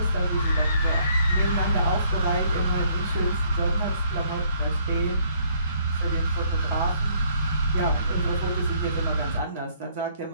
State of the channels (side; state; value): both; inverted; correlation -0.66